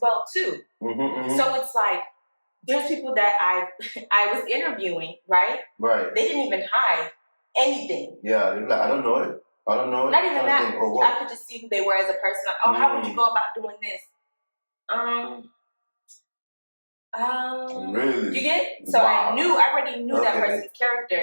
well too. So it's like there's people that I was interviewing, right? Right. They didn't even hide anything. Yeah, they're like, I don't know it. Not even that. I could just see who they were as a person. Like, oh, how would you go about doing this? Really? You get? So Wow. I already knew that person's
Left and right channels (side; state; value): both; inverted; correlation -1.00